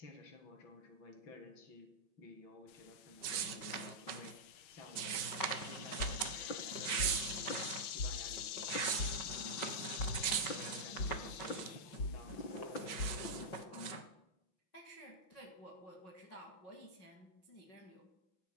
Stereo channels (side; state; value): right; late; 5.4 ms